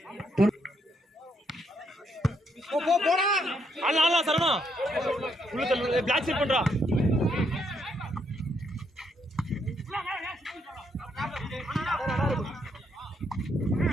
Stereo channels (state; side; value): normal; both; correlation 0.75